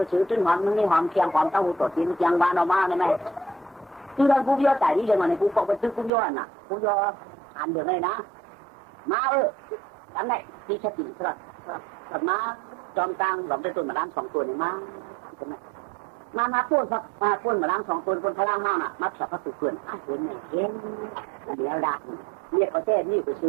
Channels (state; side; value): drops out; left; at 6.1 s